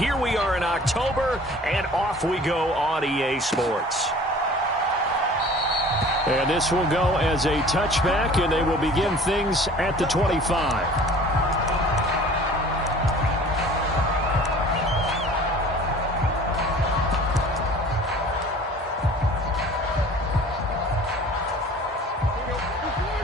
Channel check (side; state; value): both; normal; correlation 0.47